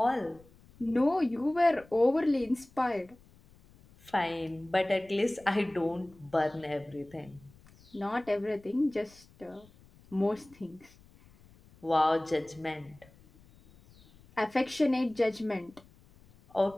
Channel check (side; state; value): left; noise; rumble, 26 dB below the sound